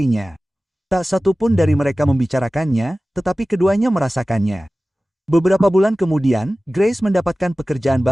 Tak satu pun dari mereka membicarakannya, tetapi keduanya merasakannya. Beberapa bulan kemudian, Grace mendapatkan pekerjaan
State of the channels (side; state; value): both; normal; correlation 0.97